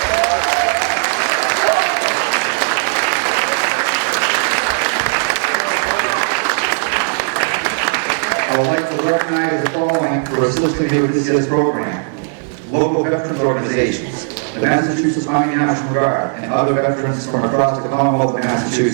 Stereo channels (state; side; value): silent; left; 63 dB below the other